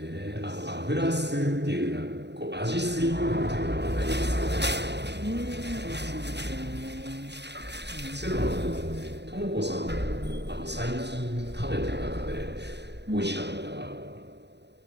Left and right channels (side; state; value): left; late; 0.50 ms